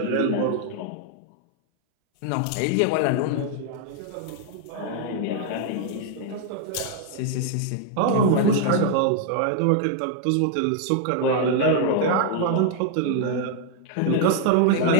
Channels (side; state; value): both; different; correlation 0.00